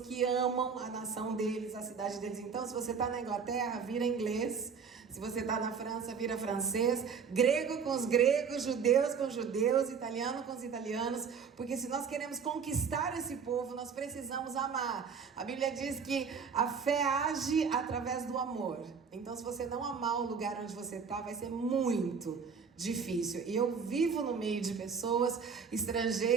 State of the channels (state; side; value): quieter; left; 6.1 dB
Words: amam a nação deles, a cidade deles. Então, se você está na Inglaterra, vira inglês. Se você está na França, vira francês. Grego com os gregos, judeus com os judeus, italiano com os italianos. Porque se nós queremos conquistar esse povo, nós precisamos amar. A Bíblia diz que a fé age através do amor. Então, se você não amar o lugar onde você está, vai ser muito difícil. E eu vivo no meio de pessoas